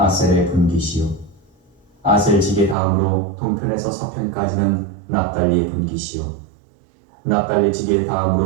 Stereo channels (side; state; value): left; drops out; at 2.8 s